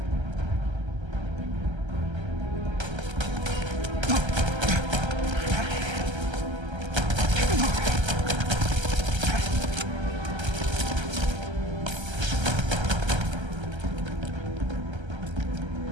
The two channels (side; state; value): left; late; 1.3 ms